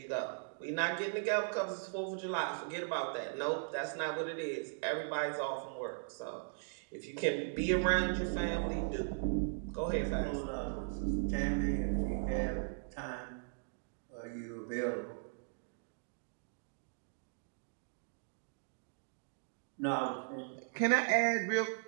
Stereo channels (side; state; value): left; silent; digital silence